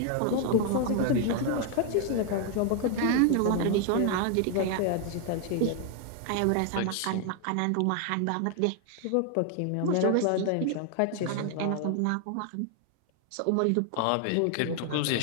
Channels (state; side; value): different; both; correlation 0.00